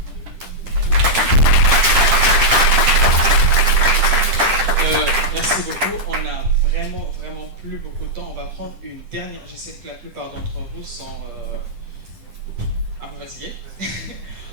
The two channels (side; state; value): left; late; 10 ms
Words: Merci beaucoup. On a vraiment plus beaucoup de temps. On va prendre une dernière. Je sais que la plupart d'entre vous sont un peu fatigués.